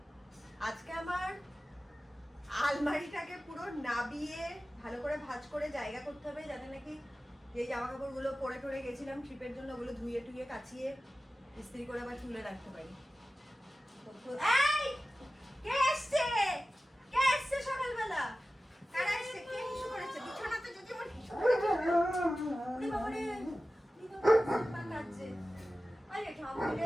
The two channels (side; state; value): both; normal; correlation 0.95